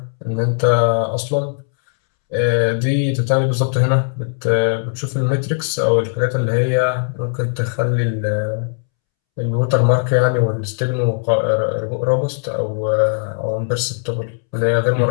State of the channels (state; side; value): silent; right; 67 dB below the other